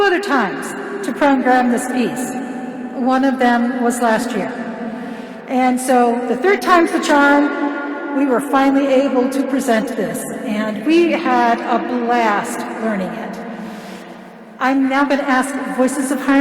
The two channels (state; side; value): identical; both; correlation 1.00